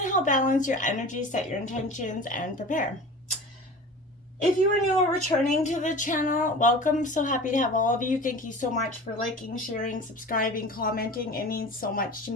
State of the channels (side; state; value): both; normal; correlation 0.37